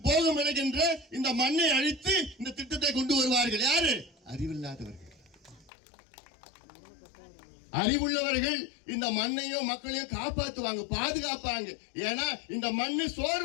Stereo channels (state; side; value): drops out; right; at 5.7 s